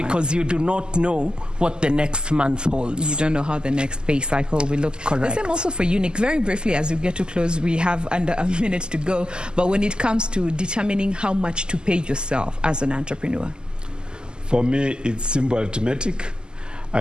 you do not know what the next month holds. You don't know how the next pay cycle will look. Correct. The same also for you, Nick. Very briefly, as we get to close, we have under a minute to go. But when it comes to determining how much to pay yourself as an entrepreneur? For me, it's simple arithmetic.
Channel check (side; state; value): left; late; 0.046 ms